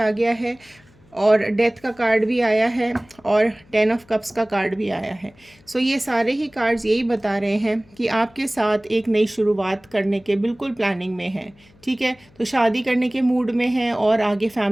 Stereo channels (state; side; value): noise; left; hum, 29 dB below the sound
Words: गया है और डेथ का कार्ड भी आया है और 10 ऑफ कप्स का कार्ड भी आया है। सो ये सारे ही कार्ड्स यही बता रहे हैं कि आपके साथ एक नई शुरुआत करने के बिल्कुल प्लानिंग में है, ठीक है। तो शादी करने के मूड में है और आगे